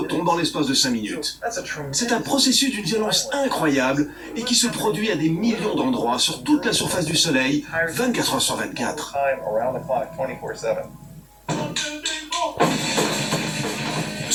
en l'espace de 5 minutes. C'est un processus d'une violence incroyable et qui se produit à des millions d'endroits sur toute la surface du Soleil, 24 heures sur 24.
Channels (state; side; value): identical; both; correlation 1.00